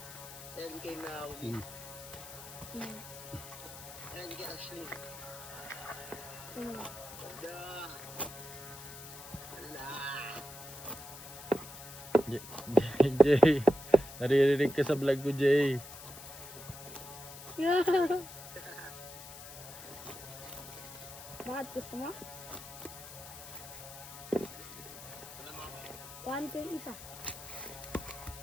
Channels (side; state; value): left; noise; hiss, 14 dB below the sound